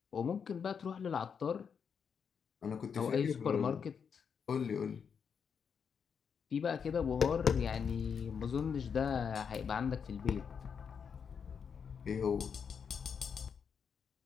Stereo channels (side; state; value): right; quieter; 6.7 dB